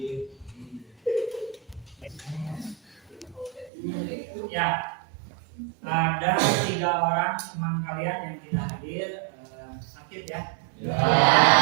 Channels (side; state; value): left; drops out; at 3.7 s